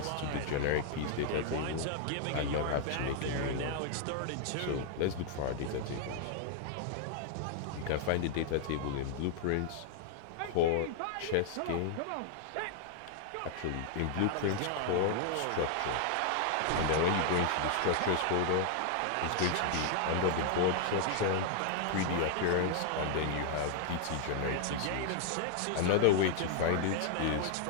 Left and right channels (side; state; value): both; different; correlation 0.00